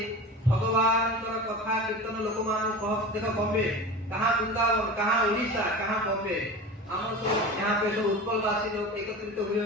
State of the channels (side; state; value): both; normal; correlation 0.32